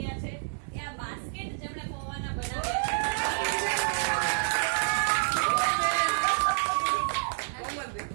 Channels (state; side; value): silent; left; 59 dB below the other